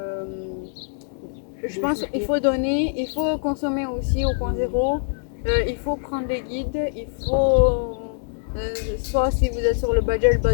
Je pense qu'il faut donner, il faut consommer aussi au point zéro. Il faut prendre des guides, il faut, soit si vous êtes sur le budget,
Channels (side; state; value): right; silent; 63 dB below the other